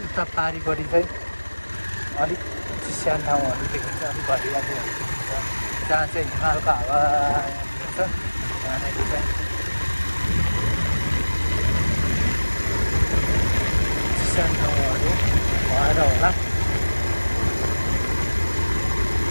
उता पारिपट्टि चाहिँ अलिक चिस्यान ठाउँहरू देखिन्छ, अलिक घरियालीहरू देखिन्छ, जहाँ चाहिँ हिमालको हावा छ त्यहाँनिर चाहिँ चिस्यान ठाउँहरू भएर होला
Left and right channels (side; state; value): both; inverted; correlation -1.00